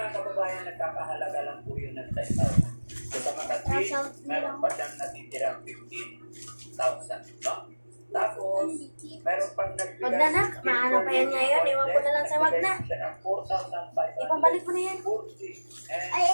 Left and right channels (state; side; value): inverted; both; correlation -1.00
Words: kababayan, nagkakahalaga lang po yun ng 10,000. So sa makatwin, meron pa siyang natitirang 15,000. No? Tapos, meron pang nagbigay. Wag na nak, maano pa yan ngayon. Iwan ko na lang sa wag na. Siya ng 4,500. Ipabalik mo na yan. Ay,